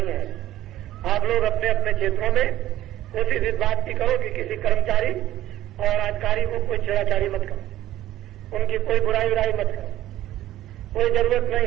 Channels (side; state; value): left; quieter; 14.0 dB